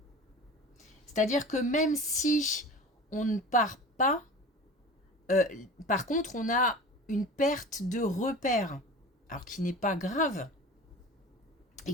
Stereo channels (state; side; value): normal; both; correlation 0.37